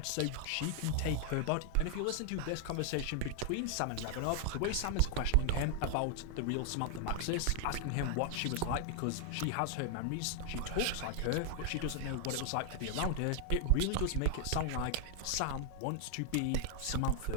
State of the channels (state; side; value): different; both; correlation 0.00